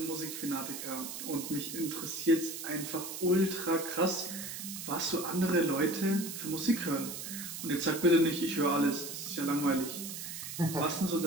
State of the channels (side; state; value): right; noise; hiss, 8 dB below the sound